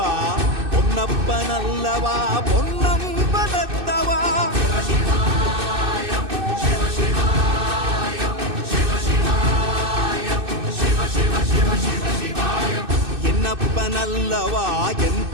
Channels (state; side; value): late; left; 2.6 ms